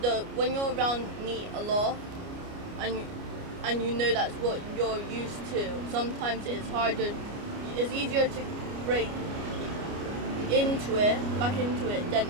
when you're around meat a lot and and you know that's what you're used to, sometimes it's harder. It's easier to break back into it, than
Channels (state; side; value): late; left; 29 ms